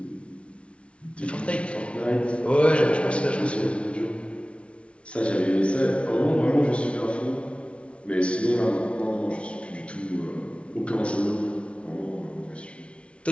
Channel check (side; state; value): right; late; 0.060 ms